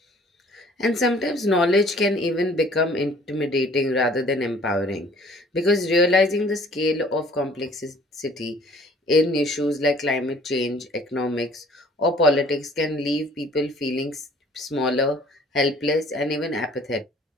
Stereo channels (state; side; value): normal; both; correlation 0.54